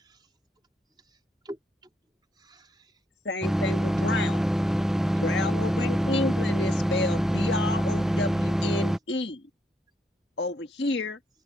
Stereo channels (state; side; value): normal; both; correlation 0.78